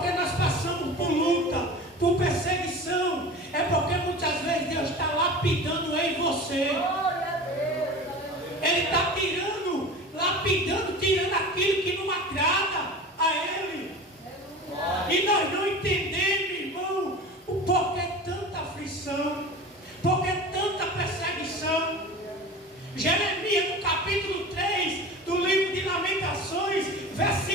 nós passamos por luta, por perseguição. É porque muitas vezes Deus está lapidando eu e você. Ele está tirando aquilo que não agrada a Ele. E nós não entendemos, irmão, o porquê tanta aflição, porquê tanta perseguição. Jeremias, no capítulo 3, do Lamentações,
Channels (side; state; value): both; normal; correlation 0.34